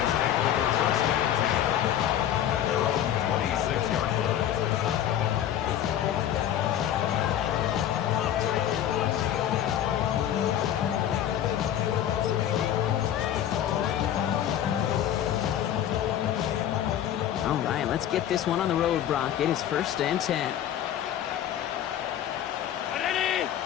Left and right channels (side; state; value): right; quieter; 10.8 dB